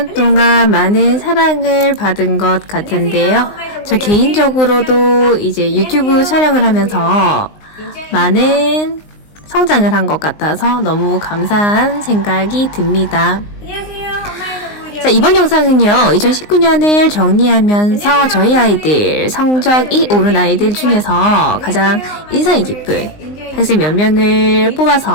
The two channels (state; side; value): late; right; 19 ms